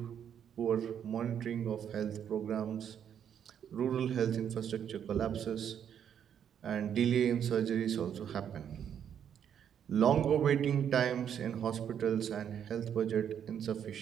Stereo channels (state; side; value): quieter; left; 8.8 dB